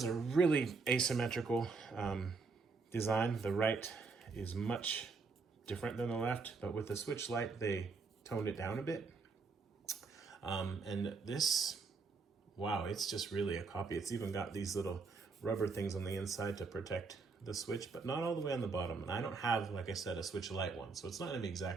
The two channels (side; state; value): left; quieter; 4.5 dB